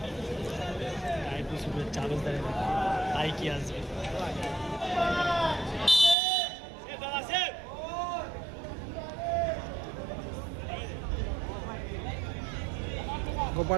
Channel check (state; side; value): drops out; left; at 6.2 s